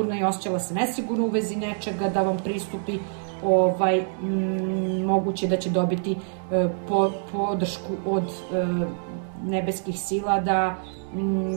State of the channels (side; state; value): left; silent; 61 dB below the other